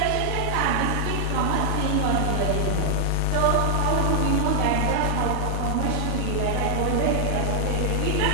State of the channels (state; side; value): different; both; correlation 0.00